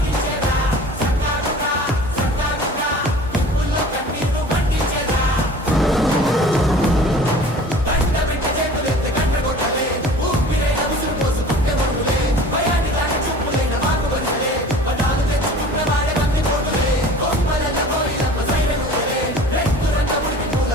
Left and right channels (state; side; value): normal; both; correlation 0.44